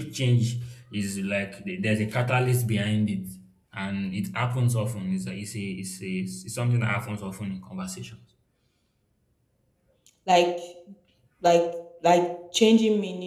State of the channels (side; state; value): both; identical; correlation 1.00